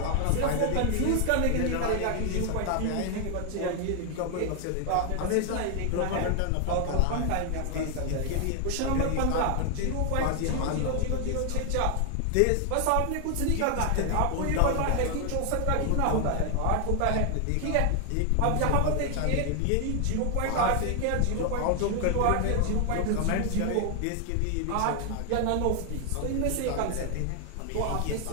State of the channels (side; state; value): both; different; correlation 0.00